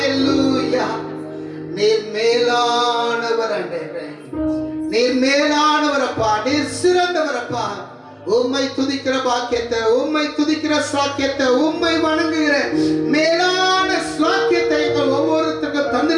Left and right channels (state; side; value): identical; both; correlation 1.00